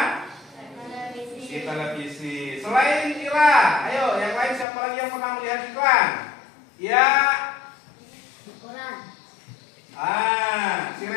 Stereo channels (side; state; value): right; drops out; at 4.7 s